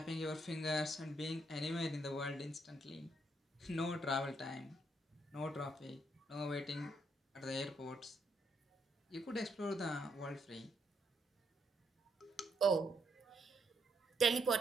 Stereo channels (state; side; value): normal; both; correlation 0.75